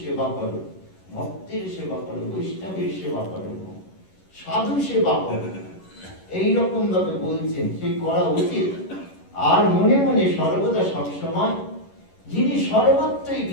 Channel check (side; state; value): right; late; 11 ms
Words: সেবা করো, ভক্তের সেবা করো, বৈষ্ণবের সেবা করো, সাধু সেবা করো, এইরকম ভাবে বলছেন সেই করা উচিত। আর মনে মনে সর্বদা সবসময় যিনি সর্বত্রই